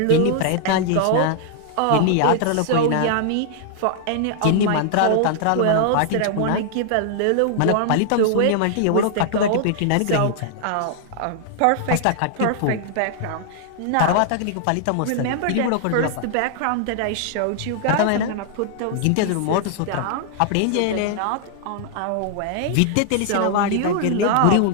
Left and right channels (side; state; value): both; different; correlation 0.00